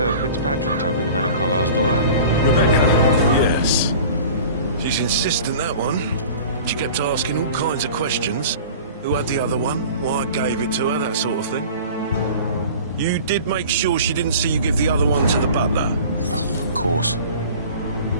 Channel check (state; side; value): inverted; both; correlation -0.42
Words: Fitzpatrick token to Madame Carlyle's daughter? Rebecca, yes. She's insistent, that one. She kept asking all kinds of questions. Who had the other one? Why I gave it to her, that sort of thing. You did make sure she didn't see you give the other one to the butler? Oh, of course.